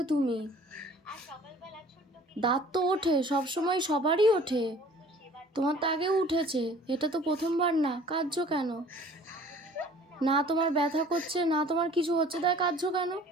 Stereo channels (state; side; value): normal; both; correlation 0.51